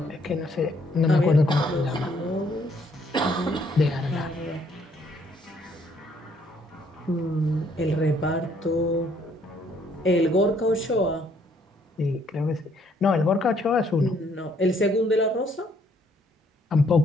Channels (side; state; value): both; normal; correlation 0.67